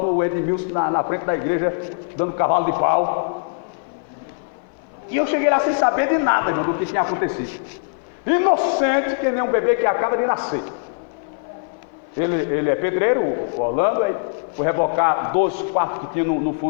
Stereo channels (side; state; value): right; silent; 58 dB below the other